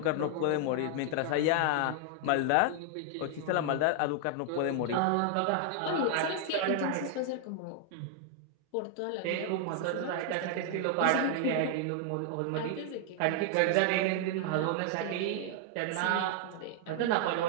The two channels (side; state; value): both; different; correlation 0.00